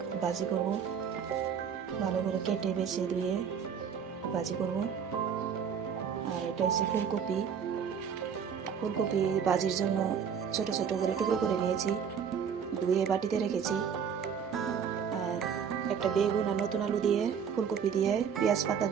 ভাজি করব। ভালো করে কেটে বেছে ধুয়ে ভাজি করব। আর এটা হচ্ছে ফুলকপি। ফুলকপি ভাজির জন্য ছোট ছোট করে টুকরো করে নিয়েছি, ধুয়ে বাটিতে রেখেছি। আর একটা বেগুন আর নতুন আলু দিয়ে, ফুলকপি দিয়ে, পেঁয়াজ পাতা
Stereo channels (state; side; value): quieter; left; 7.2 dB